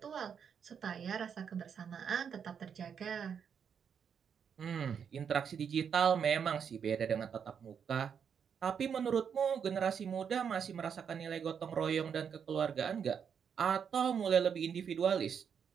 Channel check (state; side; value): quieter; left; 7.3 dB